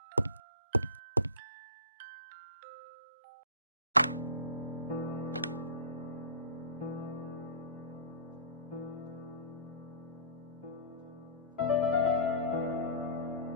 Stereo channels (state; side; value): inverted; both; correlation -0.35